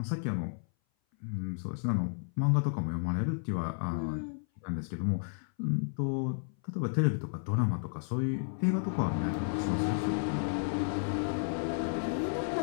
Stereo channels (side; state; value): right; silent; 56 dB below the other